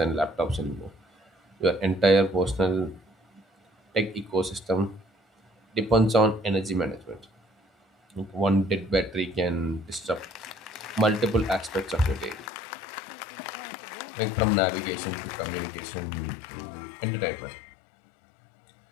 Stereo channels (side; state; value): right; drops out; at 12.5 s